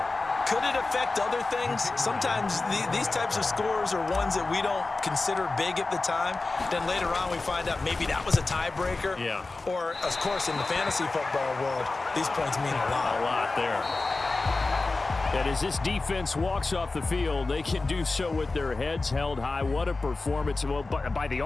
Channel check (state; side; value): quieter; right; 3.5 dB